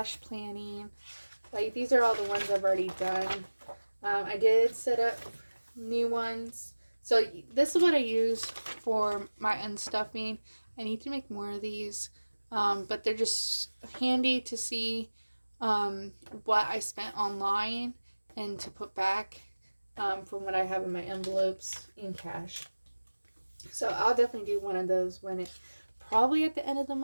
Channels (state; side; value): inverted; both; correlation -1.00